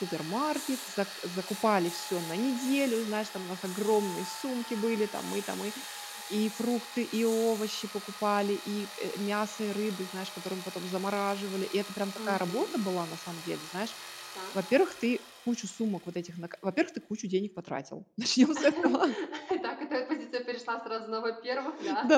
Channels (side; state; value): both; identical; correlation 1.00